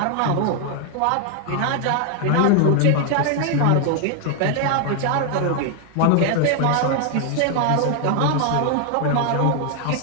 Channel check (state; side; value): different; both; correlation 0.00